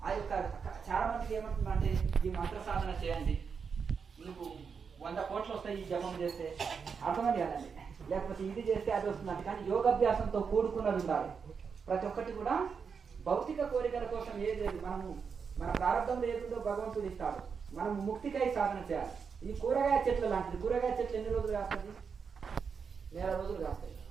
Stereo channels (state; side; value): quieter; left; 6.0 dB